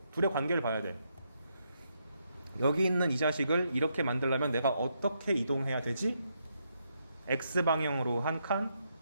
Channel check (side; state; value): both; inverted; correlation -0.79